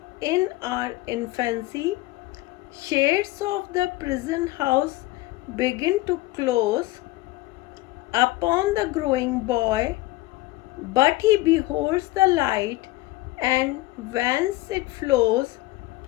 in our infancy. Shades of the prison house begin to close upon the growing boy, but he beholds the light, and whence it flows,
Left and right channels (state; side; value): quieter; right; 19.0 dB